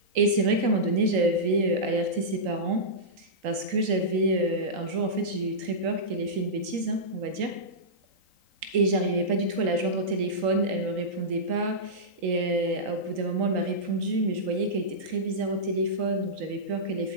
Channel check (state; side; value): late; left; 3.8 ms